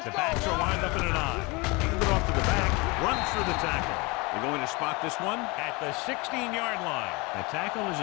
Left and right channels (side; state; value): right; quieter; 26.3 dB